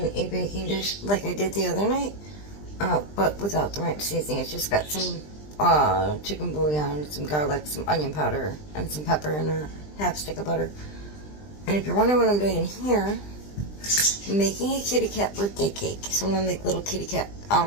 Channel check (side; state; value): right; late; 20 ms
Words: a baking dish like I did the other night, but without the ranch seasoning. It's just got some chicken bouillon, some garlic, some onion powder, and some pepper, and a half stick of butter. And if you're wondering what I'm doing here, I'm making a kitty cat birthday cake. So I'm going to make little kitty cat,